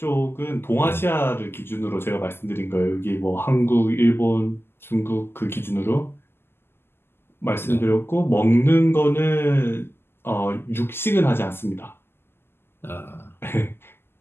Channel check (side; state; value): right; late; 0.11 ms